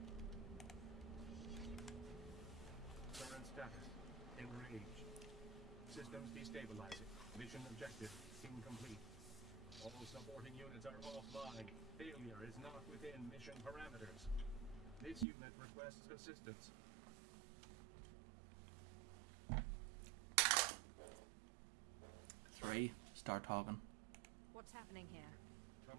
Current status. Enraged. Systems destabilizing. Mission objective incomplete. All supporting units are offline. Failure is not within mission parameters. This unit requests assistance. Three. Start talking. What's happening here?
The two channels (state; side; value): drops out; left; at 15.2 s